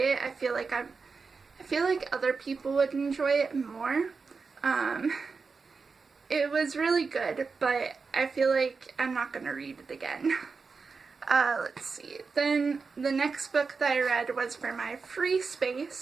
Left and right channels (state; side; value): quieter; left; 4.8 dB